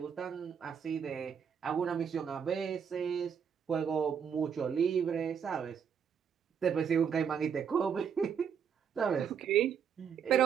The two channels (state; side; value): quieter; left; 7.4 dB